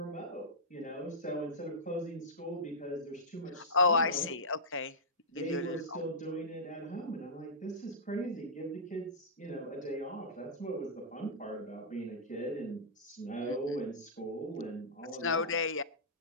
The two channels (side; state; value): both; normal; correlation -0.14